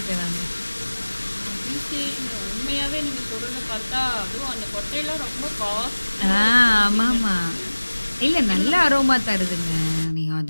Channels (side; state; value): both; inverted; correlation -1.00